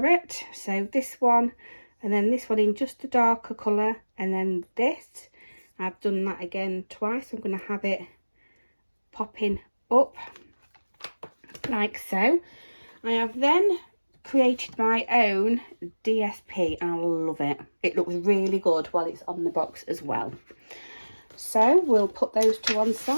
so this one, and then this one in just a darker colour, and then this. I've done that again twice. I'm going to have it popping up like so. I have then created my own DSP and I love it. It looks really good while it's on the box as well. So we'll put those to one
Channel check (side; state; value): both; inverted; correlation -1.00